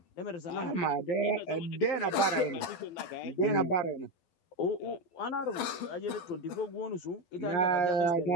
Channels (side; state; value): right; late; 12 ms